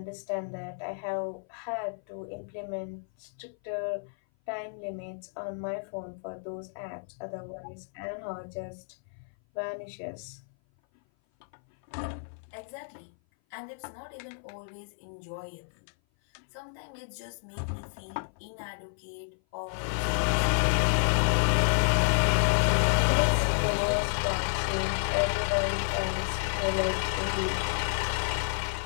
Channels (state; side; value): silent; right; 56 dB below the other